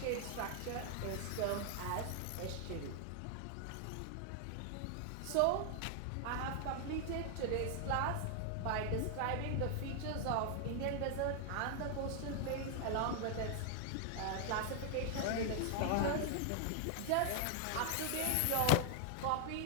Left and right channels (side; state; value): both; different; correlation 0.00